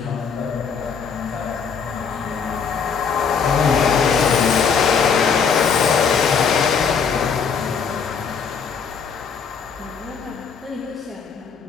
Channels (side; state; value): right; quieter; 6.2 dB